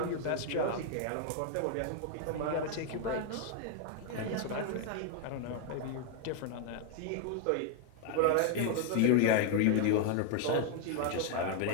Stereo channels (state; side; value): different; both; correlation 0.00